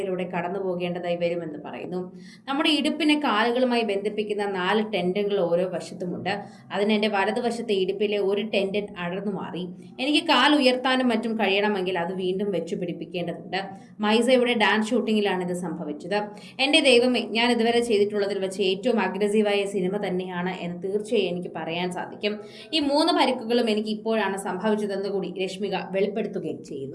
കടന്നു പോകേണ്ടതായി വരുമെന്ന് പറയുന്നു. നമ്മുടെ ഇടുപ്പിനെ കാലുകളുമായി ബന്ധിപ്പിക്കുന്ന 4 ടെൻഡനുകൾ ഓരോ വശത്തുമുണ്ട്. അതിന് എൻ്റെ വലതുവശത്തെ ഇടുപ്പിലെ ഒരു ടെൻഡൻ അടർന്നു മാറി. എനിക്ക് കാൽ ഉയർത്താനും മറ്റും കഴിയണമെങ്കിൽ അത് വീണ്ടും വെച്ചു പിടിപ്പിക്കേണ്ടതുണ്ട്. മൈസയുടെ ഡാൻസ് ഷൂട്ടിങ്ങിലാണ് ഇത് സംഭവിച്ചത്. എൻ്റെ ദൈവമേ, ഞാൻ ഇതുവരെ ചെയ്തിട്ടുള്ളതിൽ വെച്ച് ഏറ്റവും അഗ്രസീവായ സിനിമ തന്നെയാണ് എന്ന് തീർച്ചയായും എനിക്ക് പറയാൻ സാധിക്കും. ഈ 3 പരിക്കുകളും എനിക്ക് ഇപ്പോഴാണ് സംഭവിച്ചതെന്ന് കൂടി രശ്മിക വെളിപ്പെടുത്തുകയും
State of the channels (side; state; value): both; identical; correlation 1.00